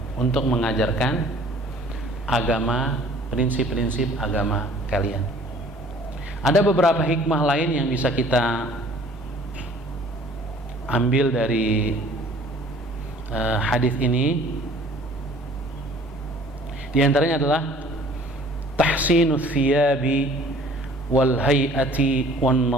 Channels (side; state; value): both; normal; correlation 0.52